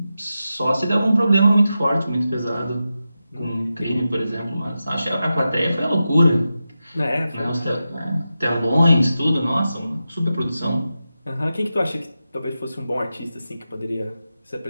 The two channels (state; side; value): inverted; both; correlation -0.91